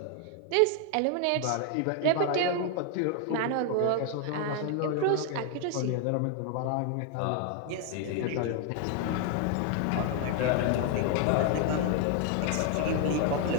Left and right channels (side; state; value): both; different; correlation 0.00